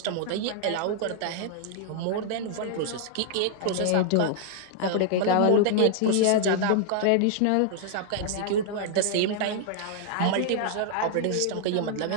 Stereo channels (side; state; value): both; different; correlation -0.01